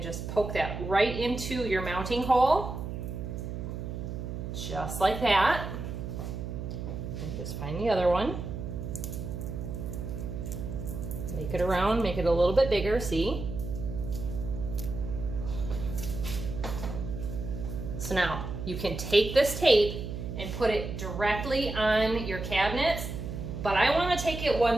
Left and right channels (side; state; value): right; noise; hum, 6 dB below the sound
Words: just poke that right into your mounting hole. Just like that. And just find the other one. Make it around, make it a little bit bigger, see? So now, you can take this tape and put it directly on your cabinets, but I want to take it